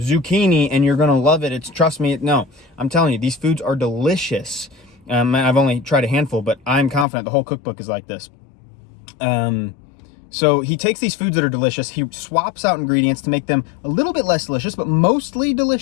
and you're going to love it. Trust me. No, I'm telling you, these foods are delicious. I've only tried a handful, but I'm confident the whole cookbook is like this. So he takes these foods that are delicious, he swaps out ingredients to make them a little bit less delicious, but mostly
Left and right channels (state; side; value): drops out; right; at 7.1 s